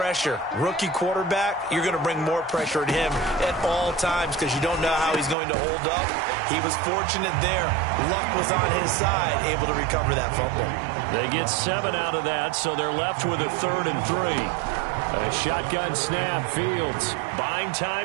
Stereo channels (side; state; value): left; drops out; at 5.4 s